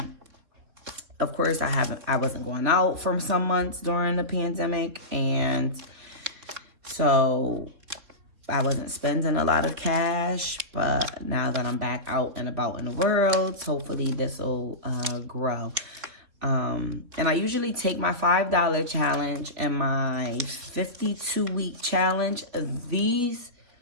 Of course, I wasn't going out for some months during the pandemic, and so I wasn't spending a lot of cash. But now that I'm back out and about in the world, hopefully this will grow. And I usually take my $5 challenge and my 52-week challenge. These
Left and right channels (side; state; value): left; late; 3.8 ms